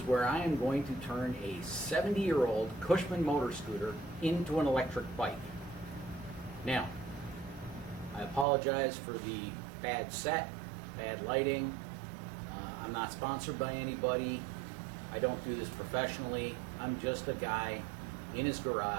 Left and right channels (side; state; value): left; drops out; at 8.5 s